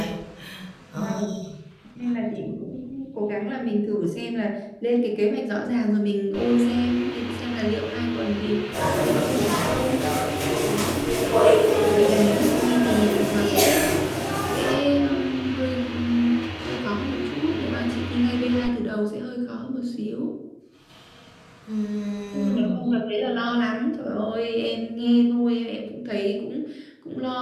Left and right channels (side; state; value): both; identical; correlation 1.00